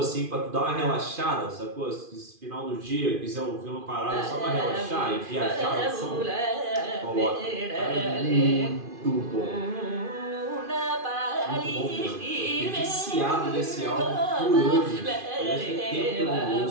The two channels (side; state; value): left; late; 2.5 ms